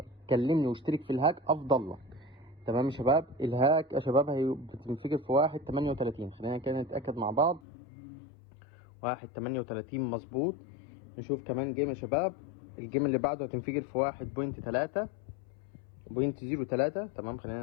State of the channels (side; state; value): right; drops out; at 7.6 s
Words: كلمني واشترك في الهاك افضل لك. تمام يا شباب، الهاك يا شباب بتنفجر في 1.38. خلينا كده نتأكد مع بعض 1.38 مظبوط. نشوف كمان جيم يا شباب. الجيم اللي بعده هتنفجر في 1.3. 0.03. تمام،